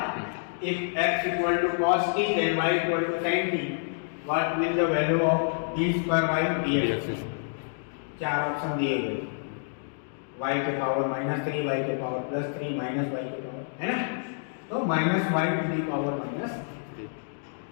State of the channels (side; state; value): right; silent; digital silence